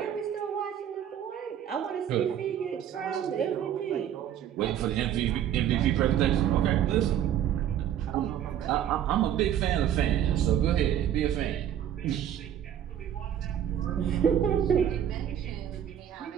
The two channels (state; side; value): quieter; left; 10.2 dB